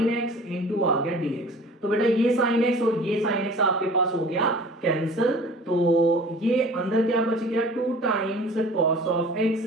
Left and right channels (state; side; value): normal; both; correlation 0.45